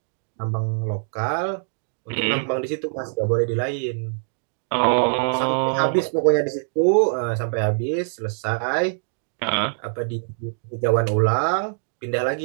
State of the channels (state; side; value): silent; left; digital silence